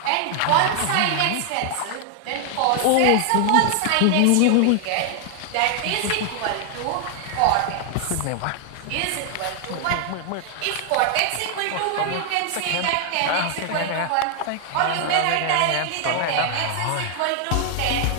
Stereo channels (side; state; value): both; different; correlation 0.00